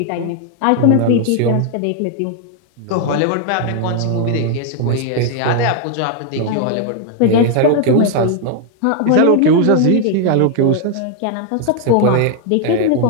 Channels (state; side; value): different; both; correlation 0.00